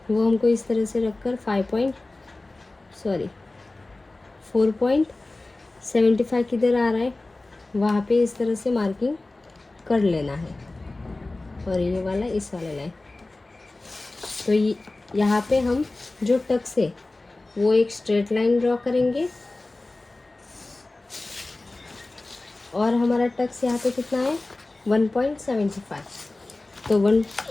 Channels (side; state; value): right; quieter; 3.0 dB